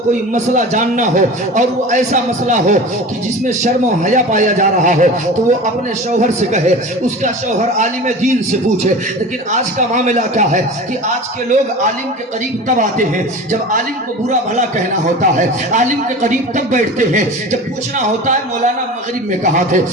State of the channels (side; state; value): both; normal; correlation 0.34